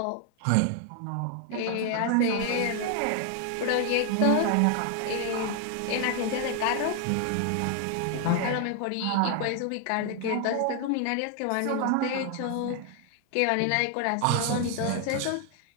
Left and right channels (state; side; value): different; both; correlation 0.00